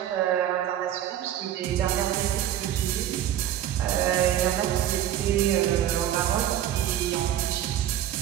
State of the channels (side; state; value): left; quieter; 11.5 dB